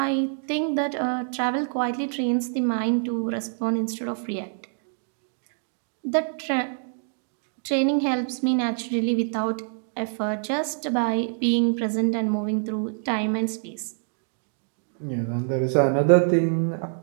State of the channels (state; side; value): silent; left; 61 dB below the other